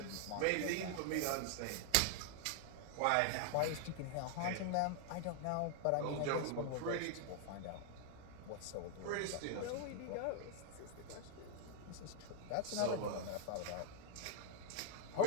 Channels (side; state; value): both; different; correlation 0.00